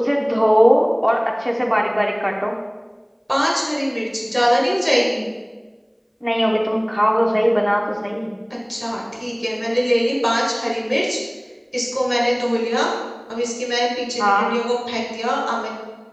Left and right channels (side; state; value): both; identical; correlation 1.00